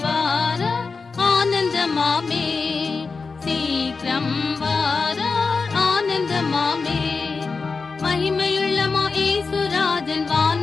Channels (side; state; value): right; quieter; 4.6 dB